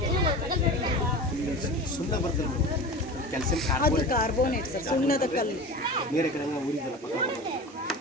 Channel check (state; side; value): normal; both; correlation 0.32